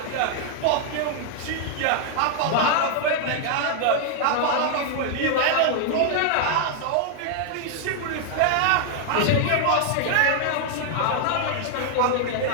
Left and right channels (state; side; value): different; both; correlation 0.00